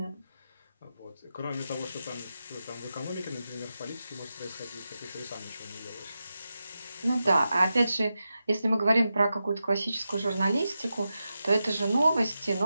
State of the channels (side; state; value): both; inverted; correlation -0.90